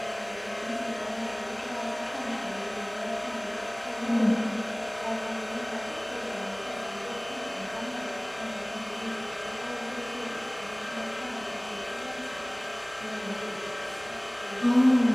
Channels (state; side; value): noise; left; hum, 29 dB below the sound